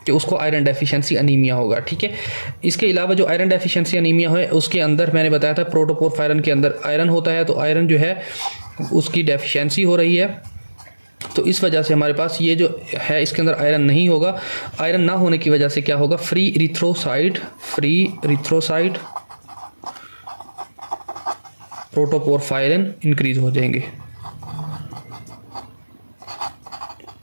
कि उसको आयरन डेफिशिएंसी अनीमिया होगा, ठीक है। इसके अलावा जो आयरन डेफिशिएंसी अनीमिया है उसके अंदर मैंने बताया था प्रोटोपोरफायरन के अंदर आयरन होता है, तो आयरन जो है उसकी डेफिशिएंसी हो रही है, तो इस वजह से हमारे पास ये जो है इसके अंदर आयरन नहीं होगा। आयरन ना होने की वजह से क्या होगा, फ्री इरिथ्रोसाइट प्रोटोपोरफायरन इंक्रीज हो जाएंगे।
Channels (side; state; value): both; inverted; correlation -1.00